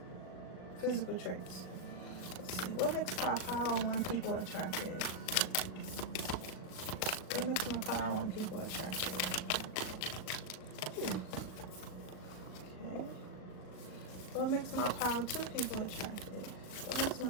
physical traits. Let's see, what makes my power on people attractive? What makes my power on people attractive? Okay. What makes my power to people attractive? What makes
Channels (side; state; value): right; late; 38 ms